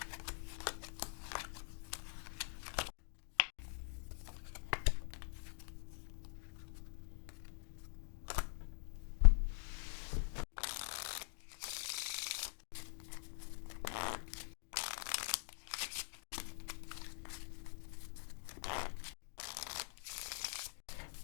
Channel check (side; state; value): right; silent; digital silence